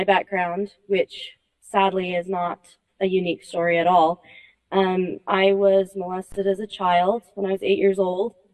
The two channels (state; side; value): identical; both; correlation 1.00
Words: background, which sadly is not a unique story at all, I was molested as a child when I was 8 years old.